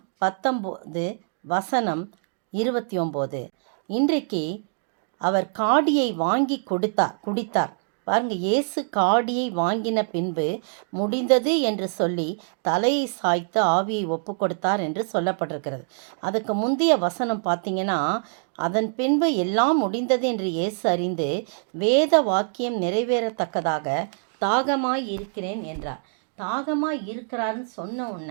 19:29. இன்றைக்கு அவர் காடியை வாங்கி குடித்தார். பாருங்கள், இயேசு காடியை வாங்கின பின்பு முடிந்தது என்று சொல்லி தலையை சாய்த்து ஆவியை ஒப்பு கொடுத்தார் என்று சொல்லப்பட்டிருக்கிறது. அதுக்கு முந்தைய வசனம் பார்த்தீங்கன்னா, அதன் பின்பு எல்லாம் முடிந்தது என்று இயேசு அறிந்து வேத வாக்கியம் நிறைவேறத்தக்கதாக தாகமாய் இருக்கிறேன் என்றார். தாகமாக இருக்கிறாருன்னு சொன்ன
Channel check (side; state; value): left; silent; digital silence